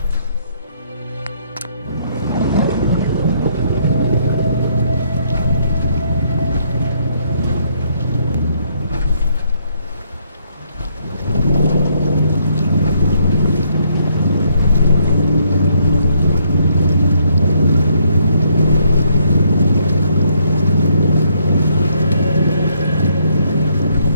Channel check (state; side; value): inverted; both; correlation -0.70